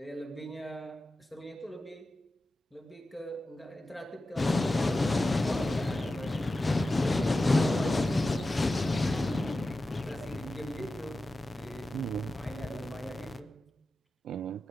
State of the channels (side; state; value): both; normal; correlation 0.93